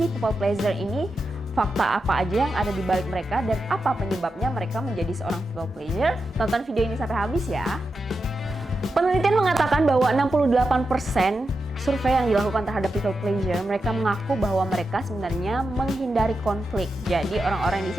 people pleasure ini? Fakta apa aja yang ada di balik mereka dan apa penyebabnya mereka menjadi seorang people pleasure? Tonton video ini sampai habis ya. Penelitian mengatakan bahwa 68% survei yang dilakukan terhadap people pleasure, mereka mengaku bahwa mereka sebenarnya menghindari konflik. Jadi orang-orang yang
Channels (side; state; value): both; normal; correlation 0.88